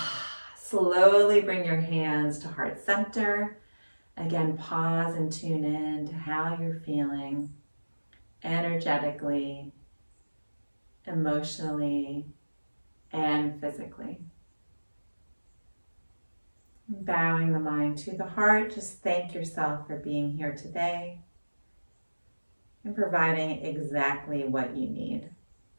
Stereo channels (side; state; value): both; inverted; correlation -1.00